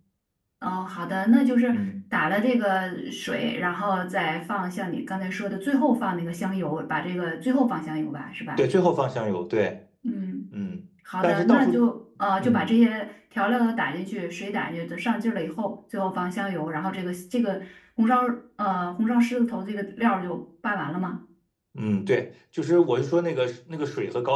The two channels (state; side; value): identical; both; correlation 1.00